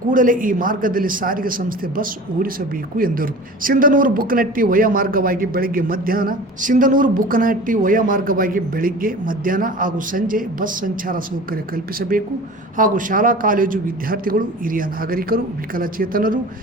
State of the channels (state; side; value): normal; both; correlation 0.39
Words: ಕೂಡಲೇ ಈ ಮಾರ್ಗದಲ್ಲಿ ಸಾರಿಗೆ ಸಂಸ್ಥೆ ಬಸ್ ಓಡಿಸಬೇಕು ಎಂದರು. ಸಿಂಧನೂರು ಬುಕ್ಕನಹಟ್ಟಿ ವಯ ಮಾರ್ಗವಾಗಿ ಬೆಳಿಗ್ಗೆ ಮಧ್ಯಾಹ್ನ ಹಾಗೂ ಸಂಜೆ ಬಸ್ ಸಂಚಾರ ಸೌಕರ್ಯ ಕಲ್ಪಿಸಬೇಕು ಹಾಗೂ ಶಾಲಾ ಕಾಲೇಜು ವಿದ್ಯಾರ್ಥಿಗಳು, ಹಿರಿಯ ನಾಗರಿಕರು, ವಿಕಲಚೇತನರು,